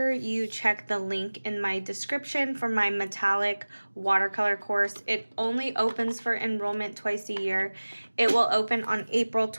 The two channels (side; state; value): both; inverted; correlation -1.00